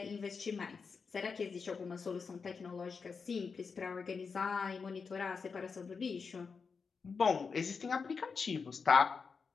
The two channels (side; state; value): right; quieter; 5.3 dB